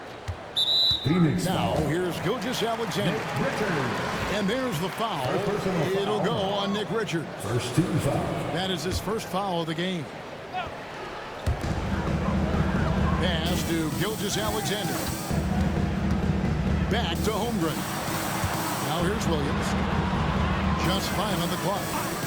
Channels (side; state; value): both; identical; correlation 1.00